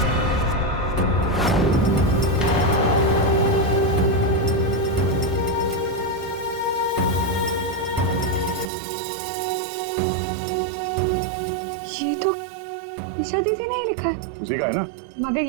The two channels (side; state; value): left; drops out; at 8.7 s